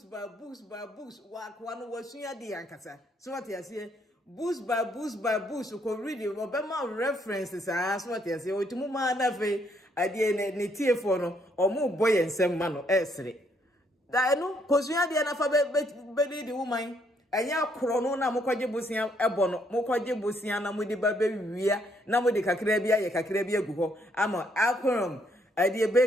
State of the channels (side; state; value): both; normal; correlation 0.71